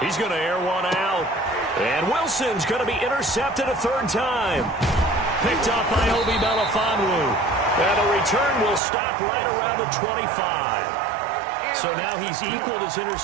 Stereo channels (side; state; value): left; drops out; at 8.8 s